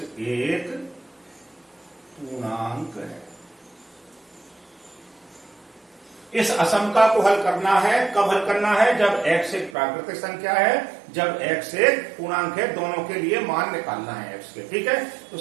एक पूर्णांक है। इस असमता को हल करना है। कब हल करना है? जब x एक प्राकृतिक संख्या है, जब x एक पूर्णांक है, दोनों के लिए मान निकालना है x के। ठीक है, तो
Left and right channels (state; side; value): drops out; left; at 9.8 s